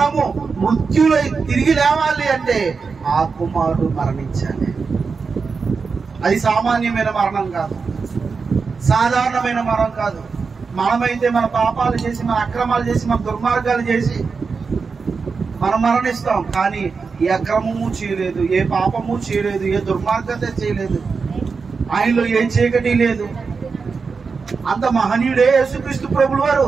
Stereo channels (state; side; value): quieter; left; 5.0 dB